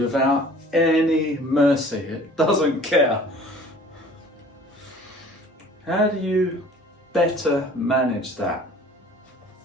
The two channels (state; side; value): normal; both; correlation 0.49